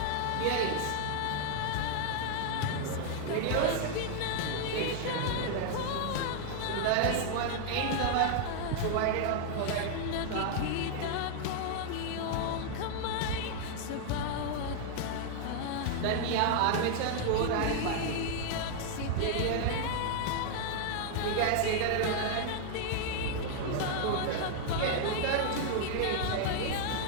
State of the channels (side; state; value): both; different; correlation 0.00